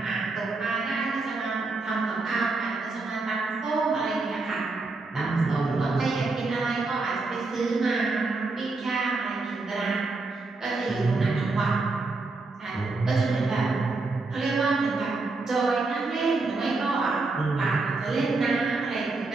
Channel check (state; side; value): quieter; left; 3.6 dB